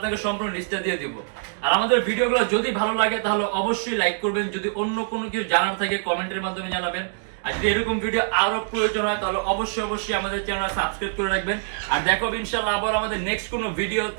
সম্পূর্ণ লিস্টটা দিয়ে দিব। আর আমাদের ভিডিওগুলো যদি ভালো লাগে তাহলে অবশ্যই লাইক করবেন, যদি অন্য কোনো কিছু জানার থাকে কমেন্টের মাধ্যমে জানাবেন। আর যদি এরকম ভিডিও আরো প্রয়োজন হয় তাহলে অবশ্যই আমাদের চ্যানেল সাবস্ক্রাইব করে রাখবেন। আর দেখো ইনশাআল্লাহ আবার আমাদের নেক্সট কোনো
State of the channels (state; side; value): silent; left; digital silence